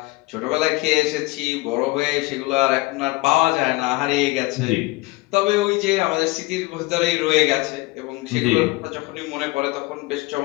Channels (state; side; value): quieter; right; 21.6 dB